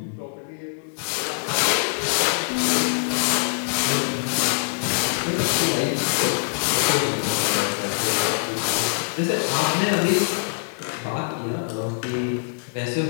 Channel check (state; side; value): silent; right; 63 dB below the other